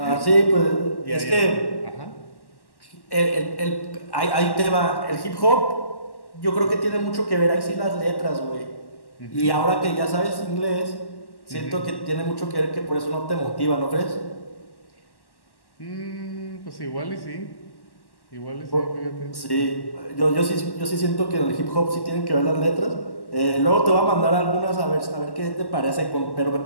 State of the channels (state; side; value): late; right; 1.1 ms